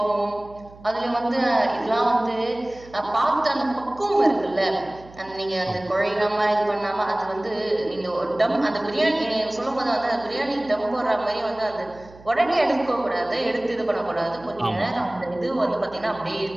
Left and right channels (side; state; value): right; noise; hum, 21 dB below the sound